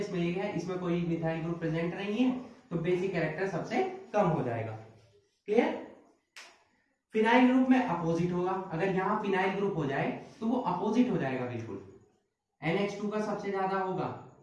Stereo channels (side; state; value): both; identical; correlation 1.00